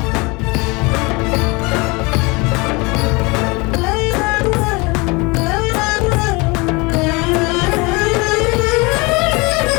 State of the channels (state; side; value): quieter; right; 26.3 dB